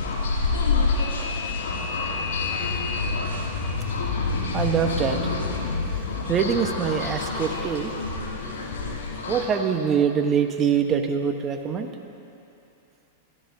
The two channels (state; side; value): normal; both; correlation -0.04